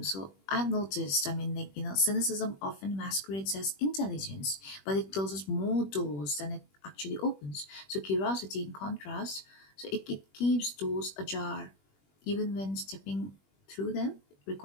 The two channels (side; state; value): right; late; 21 ms